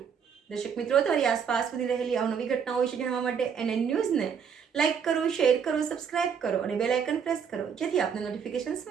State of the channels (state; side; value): quieter; left; 7.0 dB